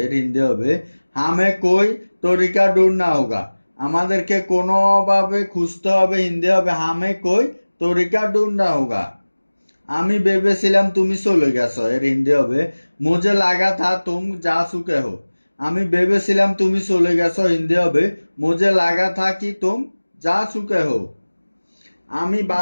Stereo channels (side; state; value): both; inverted; correlation -1.00